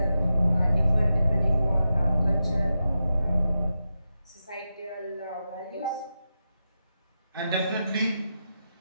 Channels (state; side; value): inverted; both; correlation -0.89